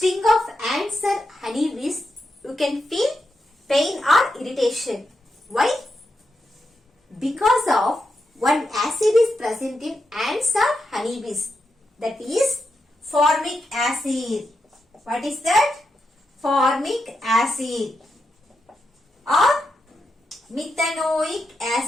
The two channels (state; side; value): normal; both; correlation 0.86